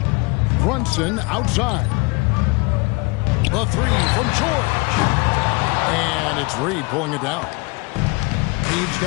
Brunson outside. The three from George. And it's Reed pulling it down. He's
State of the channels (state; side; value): quieter; right; 27.3 dB